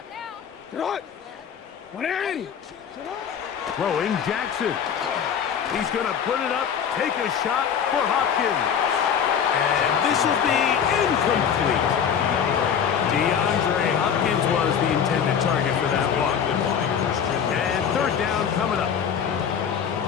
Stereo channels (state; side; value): quieter; right; 7.8 dB